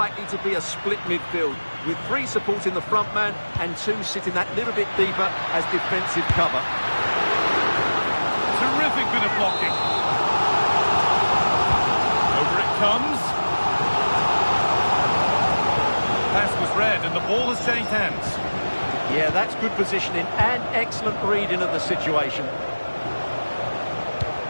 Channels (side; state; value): both; inverted; correlation -1.00